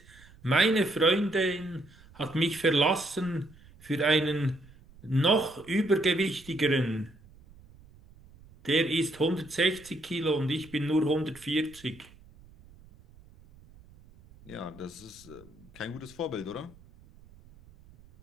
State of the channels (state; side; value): noise; right; rumble, 24 dB below the sound